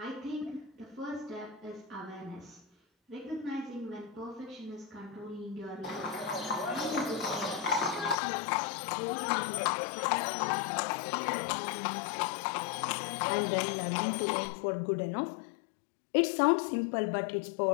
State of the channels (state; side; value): drops out; right; at 8.2 s